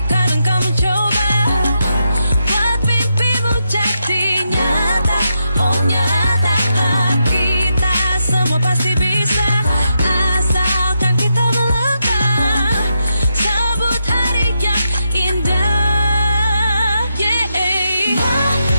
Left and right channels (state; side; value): inverted; both; correlation -0.84